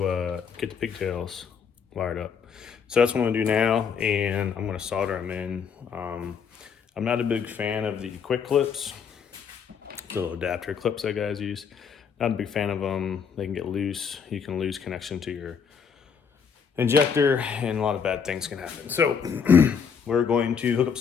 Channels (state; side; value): quieter; right; 6.6 dB